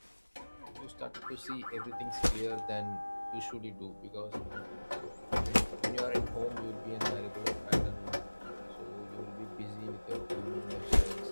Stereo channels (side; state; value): both; inverted; correlation -1.00